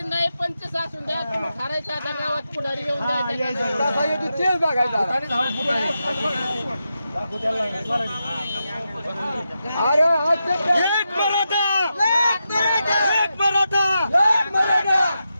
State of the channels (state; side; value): inverted; both; correlation -0.88